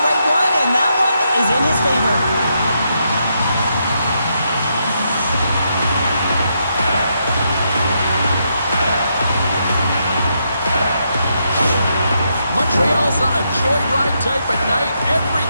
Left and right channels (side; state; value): both; inverted; correlation -0.80